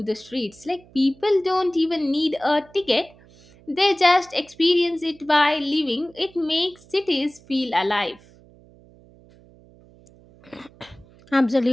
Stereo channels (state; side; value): noise; right; hum, 26 dB below the sound